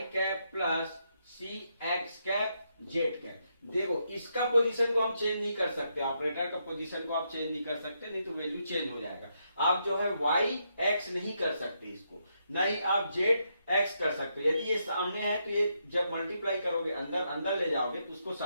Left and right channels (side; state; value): both; inverted; correlation -0.80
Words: cap plus c x cap z cap. देखो इसका पोजीशन को हम चेंज नहीं कर सकते, ऑपरेटर का पोजीशन को आप चेंज नहीं कर सकते, नहीं तो वैल्यू चेंज हो जाएगा। आप जो है y x नहीं कर सकते इसको, नहीं आप z x कर सकते हो। यदि ये सामने है तो ये जब मल्टीप्लाई करोगे अंदर ले जाओगे तो उसको